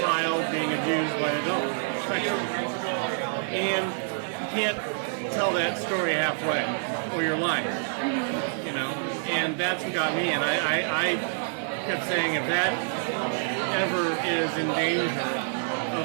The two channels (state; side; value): silent; left; digital silence